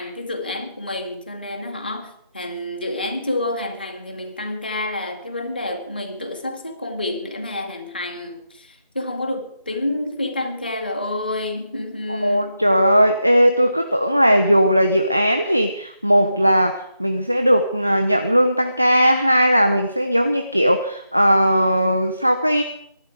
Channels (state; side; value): inverted; both; correlation -0.86